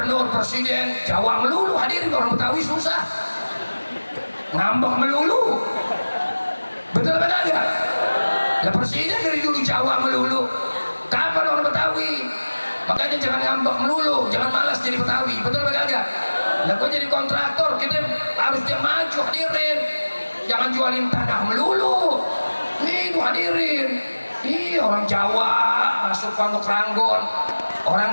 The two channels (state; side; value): inverted; both; correlation -1.00